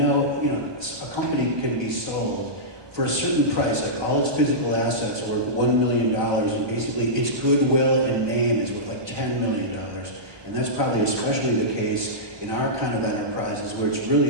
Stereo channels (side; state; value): left; late; 1.2 ms